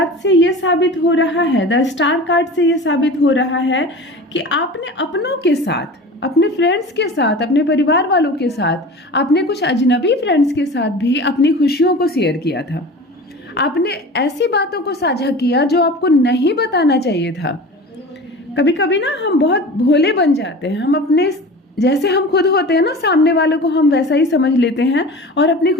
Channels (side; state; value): both; normal; correlation 0.36